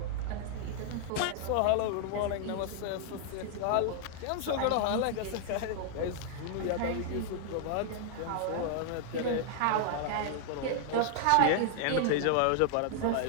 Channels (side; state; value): both; different; correlation -0.01